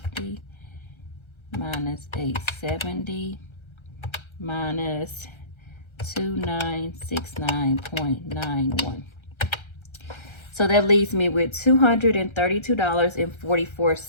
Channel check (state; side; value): late; right; 1.3 ms